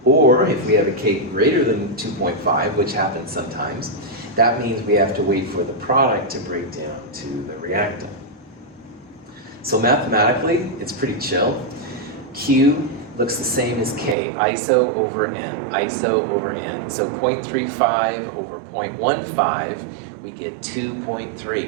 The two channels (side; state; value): left; drops out; at 14.2 s